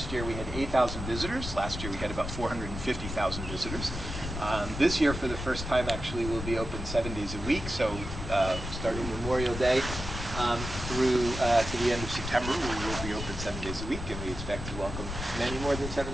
year we had 8,000 visitors. Last year we had about 450,000 visitors. This year, for the first time, actually, we'll be open 7 days a week. So starting Memorial Day through to the end of September, we will be open 7 days a week, and we expect to welcome many more than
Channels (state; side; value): noise; left; rumble, 7 dB below the sound